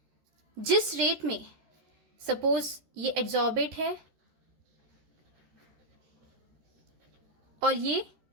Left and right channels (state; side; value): late; left; 13 ms